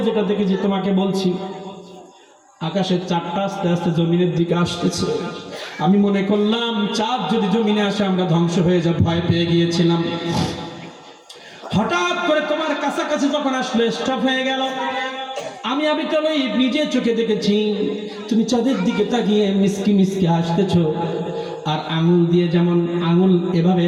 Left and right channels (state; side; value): identical; both; correlation 1.00